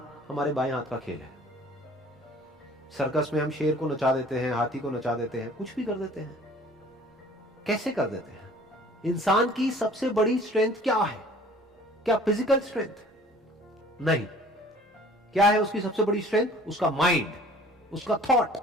हमारे बाएं हाथ का खेल है। सर्कस में हम शेर को नचा देते हैं, हाथी को नचा देते हैं, कुछ भी कर देते हैं। कैसे कर देते हैं? इंसान की सबसे बड़ी स्ट्रेंथ क्या है? क्या फिजिकल स्ट्रेंथ? नहीं। क्या है उसकी सबसे बड़ी स्ट्रेंथ? उसका माइंड, उसका थॉट।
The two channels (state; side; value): normal; both; correlation 0.50